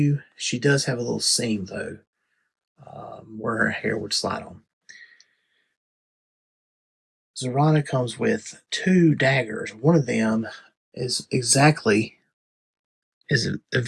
She does have a little seam, though, where her hair would slide on. Zarana comes with two daggers. One of them is a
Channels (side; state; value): both; identical; correlation 1.00